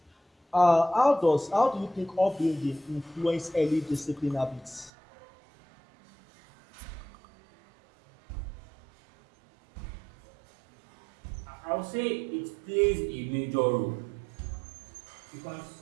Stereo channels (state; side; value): drops out; left; at 4.9 s